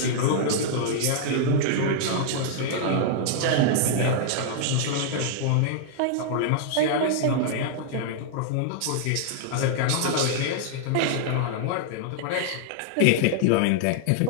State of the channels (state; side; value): different; both; correlation -0.01